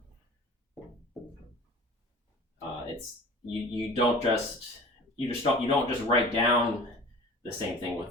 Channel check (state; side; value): normal; both; correlation 0.42